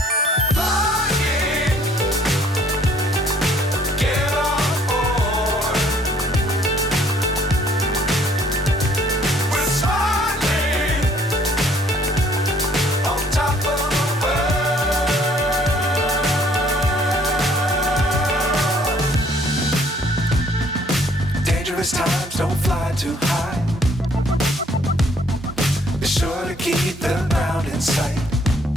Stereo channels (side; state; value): both; normal; correlation 0.61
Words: Times don't fly too high. Be sure to keep the ground in sight.